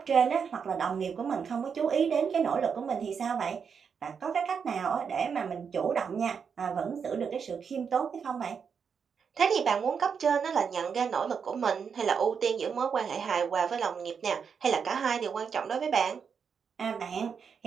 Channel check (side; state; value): left; quieter; 6.5 dB